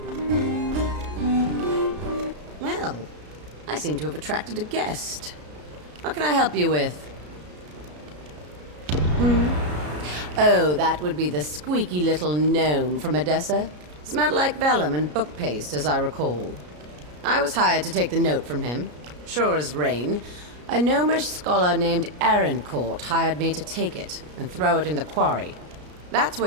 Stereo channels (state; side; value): late; left; 33 ms